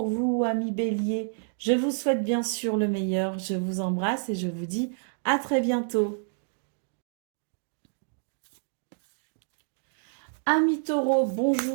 vous, amis Bélier. Je vous souhaite bien sûr le meilleur. Je vous embrasse et je vous dis à très bientôt. Amis Taureaux,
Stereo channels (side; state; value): left; silent; digital silence